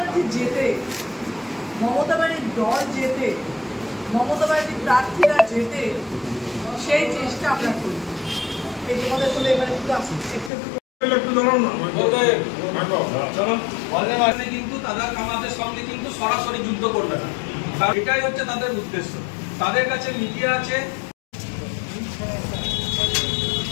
জেতে, মমতা ব্যানার্জির দল জেতে, মমতা ব্যানার্জির প্রার্থীরা জেতে, সেই চেষ্টা আমরা করি। এই তোমাদের বলে এবারে কিন্তু তারা আমাদের সঙ্গে কিন্তু সরাসরি যুদ্ধ করবে না, এটাই হচ্ছে তাদের উদ্দেশ্য। তাদের কাছে মিডিয়া আছে,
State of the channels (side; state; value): right; drops out; at 10.5 s